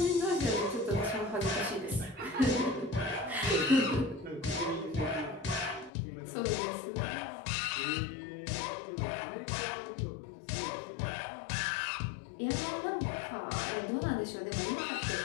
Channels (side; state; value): right; drops out; at 5.9 s